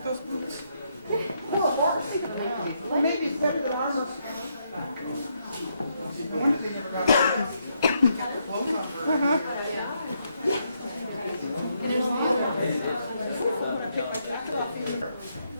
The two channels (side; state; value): both; inverted; correlation -0.77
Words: those boots? Well, maybe it's better than ours.